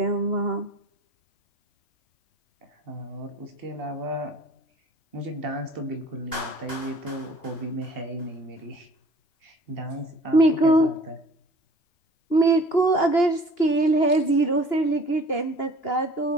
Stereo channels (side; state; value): right; late; 2.9 ms